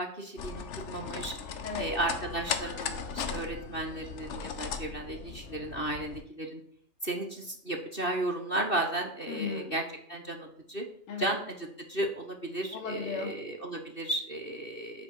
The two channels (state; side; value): late; right; 2.6 ms